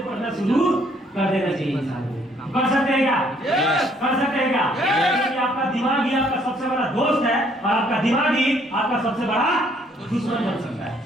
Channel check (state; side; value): normal; both; correlation 0.65